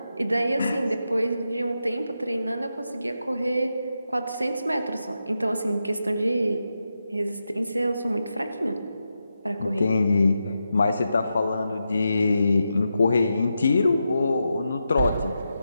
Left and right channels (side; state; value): both; inverted; correlation -0.87